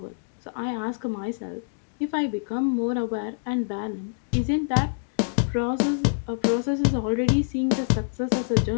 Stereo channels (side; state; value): right; silent; digital silence